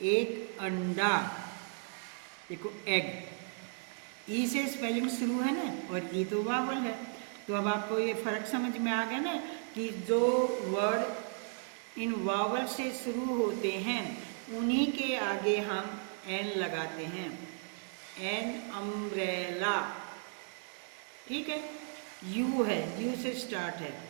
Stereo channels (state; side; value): silent; left; 54 dB below the other